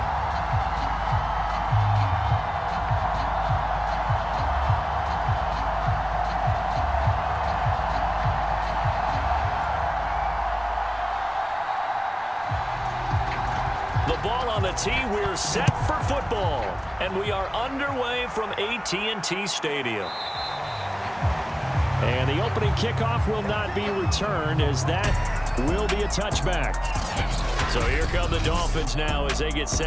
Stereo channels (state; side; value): identical; both; correlation 1.00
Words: On the tee, we're set for football, and we are underway from AT&T Stadium. And the opening kickoff will not be returned, as that will be a touchback. So here come the Dolphins now as they get